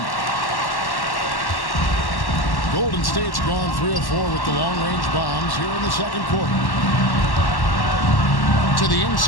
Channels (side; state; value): right; late; 1.1 ms